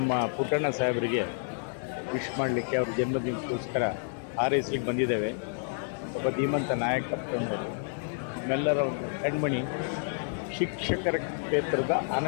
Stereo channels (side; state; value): right; silent; digital silence